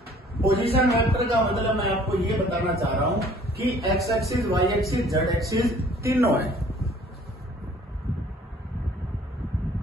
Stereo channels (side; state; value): both; normal; correlation 0.55